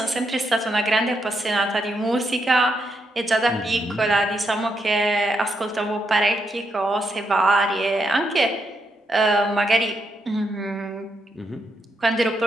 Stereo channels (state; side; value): normal; both; correlation 0.80